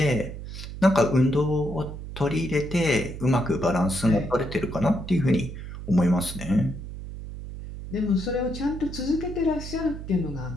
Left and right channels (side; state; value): right; noise; hum, 10 dB below the sound